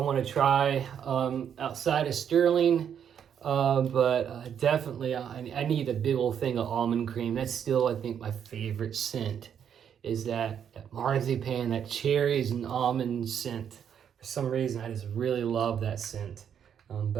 try outside of Sterling, but definitely I need a big old thing of almond cream. That's still, I think, my favorite scent. Is that marzipan, that cherries and almond scent. For some reason, I just really love that scent.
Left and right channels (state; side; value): quieter; left; 8.4 dB